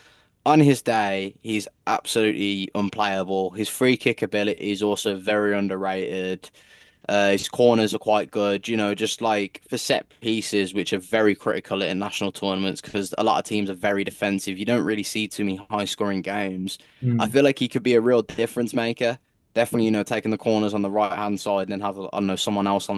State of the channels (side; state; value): both; identical; correlation 1.00